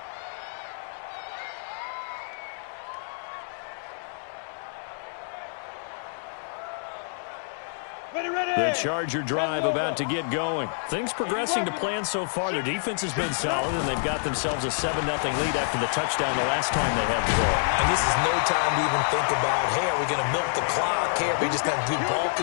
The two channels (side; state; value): right; silent; 60 dB below the other